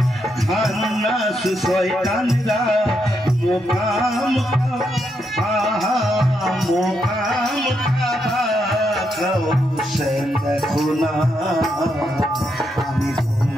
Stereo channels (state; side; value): normal; both; correlation 0.80